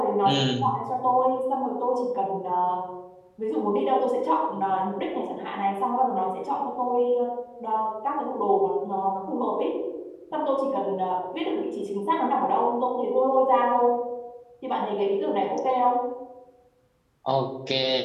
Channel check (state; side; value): identical; both; correlation 1.00